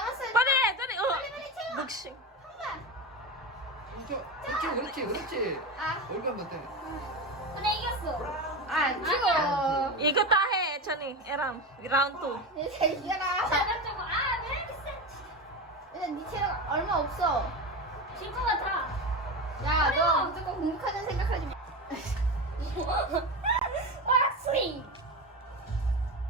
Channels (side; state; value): both; normal; correlation 0.21